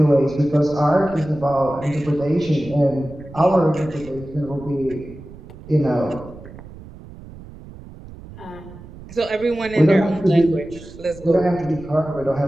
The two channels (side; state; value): right; noise; rumble, 17 dB below the sound